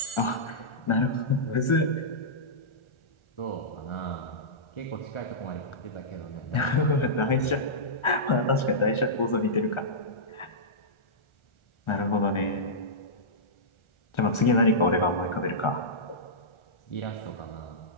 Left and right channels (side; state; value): right; late; 1.4 ms